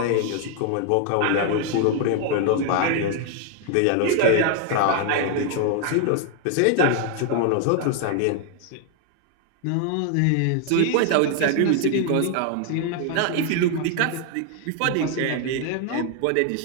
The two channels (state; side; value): different; both; correlation 0.00